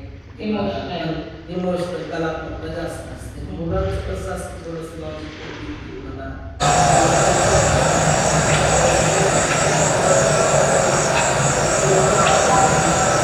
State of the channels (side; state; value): both; identical; correlation 1.00